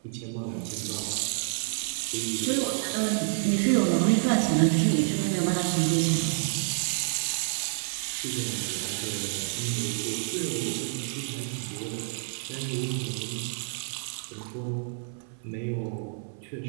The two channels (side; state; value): left; silent; 59 dB below the other